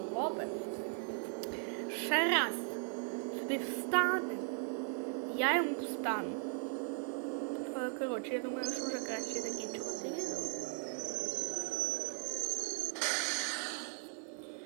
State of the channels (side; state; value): left; silent; 53 dB below the other